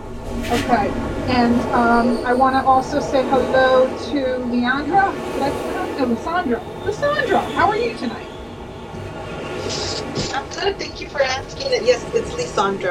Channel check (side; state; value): both; identical; correlation 1.00